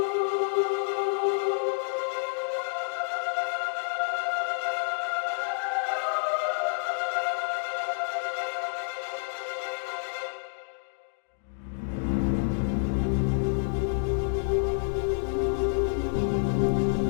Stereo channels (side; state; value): right; silent; digital silence